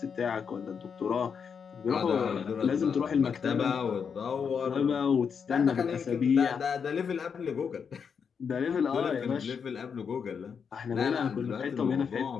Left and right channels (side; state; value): right; quieter; 6.5 dB